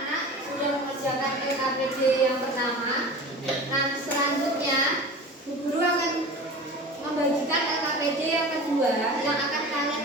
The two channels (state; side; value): normal; both; correlation 0.36